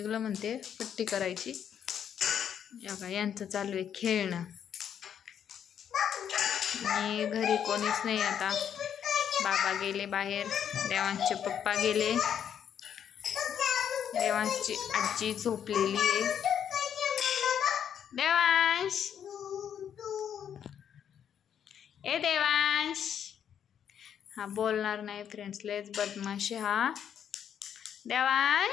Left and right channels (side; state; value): right; quieter; 8.8 dB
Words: म्हणते, पट्टी करायची. बघा यांचं चालू आहे खेळणं. आणि घरी कोणीच नाही आता. बाबा गेले बाहेर, देवांशचे पप्पा गेले, देवांशची आजी झोपलेली आहे. देवांश ए देवांश. हा बोलणार नाही फ्रेंड्स, लयच बदमाश हा